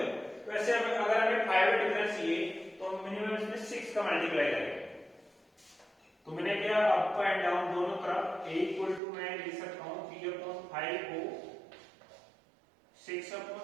वैसे अगर हमें 5 का डिफरेंस चाहिए तो हम मिनिमम इसमें 6 का मल्टीप्लाई करेंगे। तो मैंने क्या, अप एंड डाउन दोनों तरफ a इक्वल टू मैं लिख सकता हूं 3/5 को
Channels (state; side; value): drops out; left; at 9.0 s